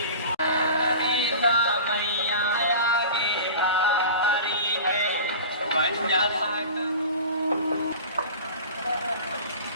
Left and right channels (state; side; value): inverted; both; correlation -0.37